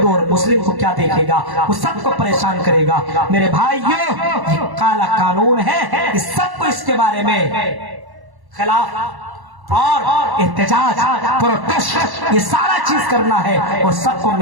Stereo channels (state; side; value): late; left; 1.1 ms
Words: اور مسلم کو کیا دیکھے گا؟ وہ سب کو پریشان کرے گا۔ میرے بھائیوں یہ کالا قانون ہے، اس سب کو اس کے بارے میں خلاف اور احتجاج پروٹیسٹ یہ سارا چیز کرنا ہے اور سب کو